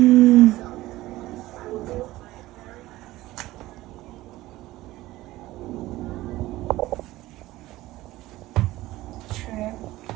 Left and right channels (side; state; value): left; quieter; 17.3 dB